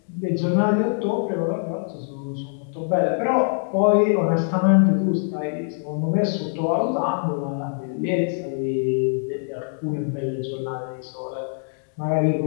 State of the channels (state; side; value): silent; right; digital silence